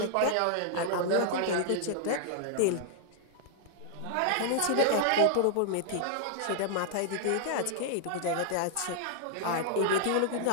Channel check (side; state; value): both; different; correlation -0.01